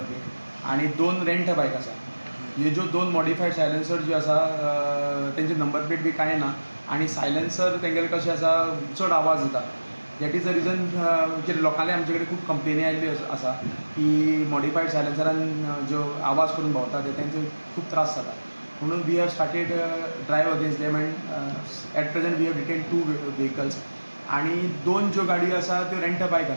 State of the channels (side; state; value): both; inverted; correlation -1.00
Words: आनी 2 रेंट बायक आसा. ह्यो ज्यो 2 मॉडिफायड सायलेन्सर ज्यो आसा तेंचे नंबर प्लेट बी कांय ना, आनी सायलेन्सर तेंगेले कशें आसा चड आवाज येता. दॅट इज द रिजन कितें लोकांनी आमचे कडेन खूब कंप्लेनी आयिल्ल्यो आसा की मॉडिफायड सायलेन्सरान ज्यो आवाज करून भोंवता तेंचे खूब त्रास जाता. म्हणून we have started drive against them and at present we have detain 2 vehicles, आनी 2 ज्यो गाडयो आसा त्यो रेंट बायक